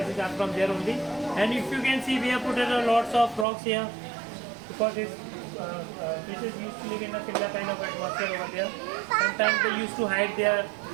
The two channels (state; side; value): drops out; left; at 3.5 s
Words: are from there only. And if you can see, we have put lots of rocks here because these fishes used to live in a similar kind of atmosphere over there. Sometimes they used to hide their